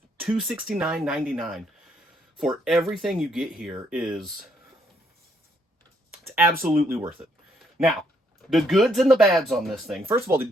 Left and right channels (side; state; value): both; normal; correlation 0.71